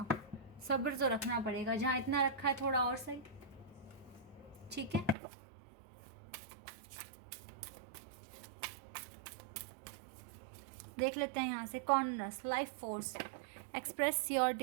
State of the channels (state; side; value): drops out; left; at 5.2 s